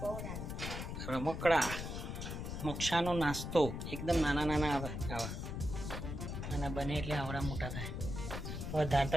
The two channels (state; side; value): noise; left; rumble, 5 dB below the sound